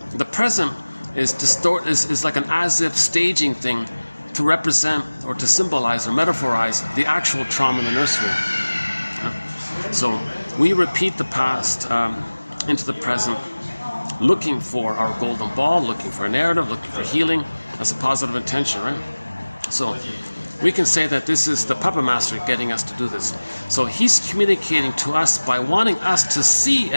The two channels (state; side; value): inverted; both; correlation -1.00